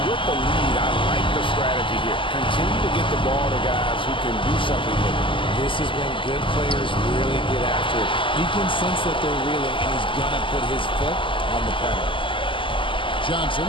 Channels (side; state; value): right; late; 0.25 ms